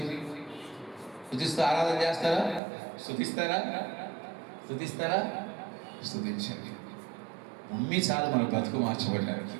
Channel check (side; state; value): left; drops out; at 2.6 s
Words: ఆరాధన చేస్తారా? స్తుతిస్తారా? స్తుతించండి. ఉమ్మి చాలు మన బ్రతుకు మార్చబడడానికి.